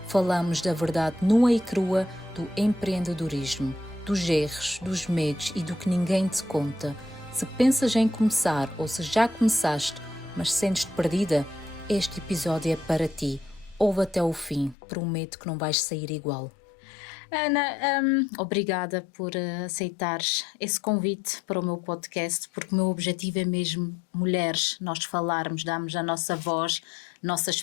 Falamos da verdade nua e crua do empreendedorismo, dos erros, dos medos e do que ninguém te conta. Se pensas em começar ou se já começaste, mas sentes-te perdida, este episódio é para ti. Ouve até o fim, prometo que não vais sair igual. Ana, obrigada por aceitares esse convite para o meu podcast, porque o meu objetivo é mesmo mulheres, nós falarmos, darmos a nossa voz, nossa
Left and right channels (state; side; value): drops out; right; at 14.8 s